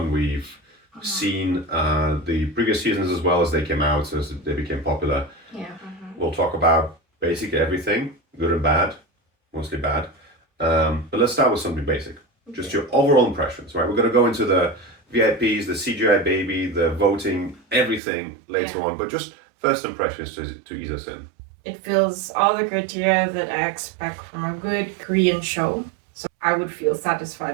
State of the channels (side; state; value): left; drops out; at 18.0 s